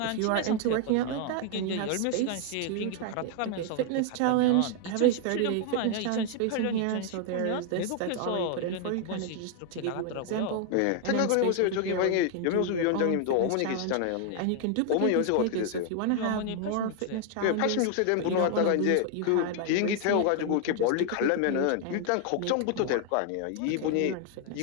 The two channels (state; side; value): different; both; correlation 0.00